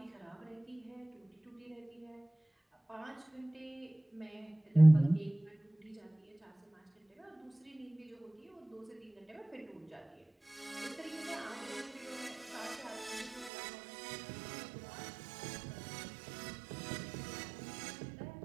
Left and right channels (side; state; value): left; drops out; at 13.5 s